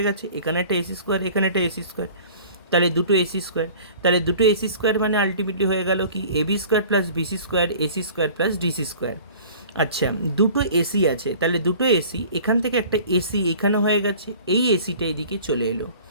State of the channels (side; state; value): both; inverted; correlation -0.46